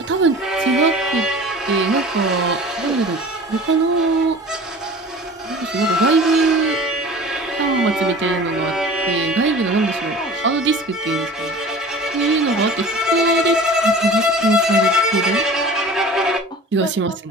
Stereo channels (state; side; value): normal; both; correlation 0.41